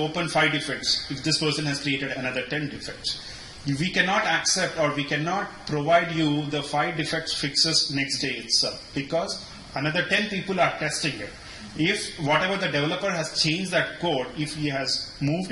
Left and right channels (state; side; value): identical; both; correlation 1.00